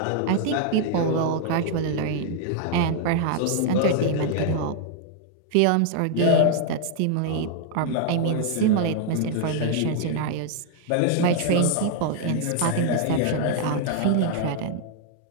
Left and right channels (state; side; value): different; both; correlation 0.00